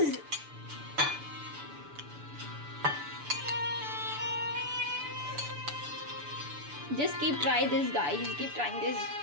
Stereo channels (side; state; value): left; late; 6.9 ms